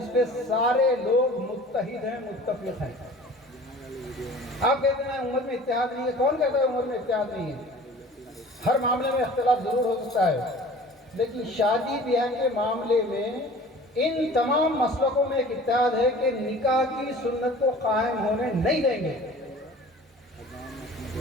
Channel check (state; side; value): normal; both; correlation 0.45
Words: پہ سارے لوگ متحد ہیں، متفق ہیں۔ آپ کہتے ہیں امت میں اتحاد نہیں ہے، کون کہتا ہے امت میں اتحاد نہیں ہے؟ ہر معاملے میں اختلاف ضرور ہو سکتا ہے، لیکن شادی بیاہ کے معاملے میں ان تمام مسلکوں میں ایک اتحاد ہے کہ نکاح کی سنت کو قائم ہونے نہیں دیں گے۔